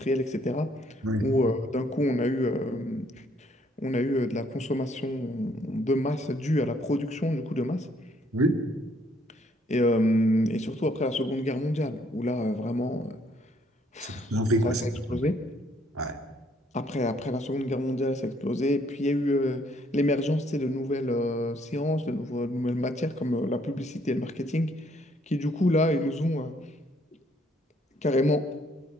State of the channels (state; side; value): normal; both; correlation 0.66